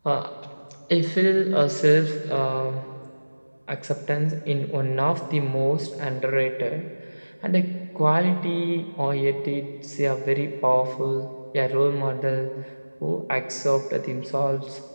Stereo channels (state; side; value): inverted; both; correlation -1.00